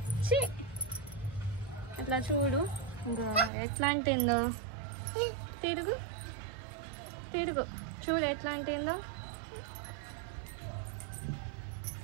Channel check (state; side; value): drops out; left; at 3.5 s